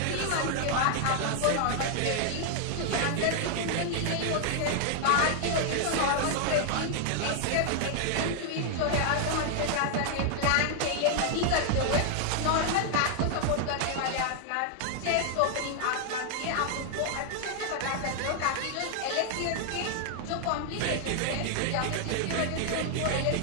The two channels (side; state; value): both; different; correlation 0.00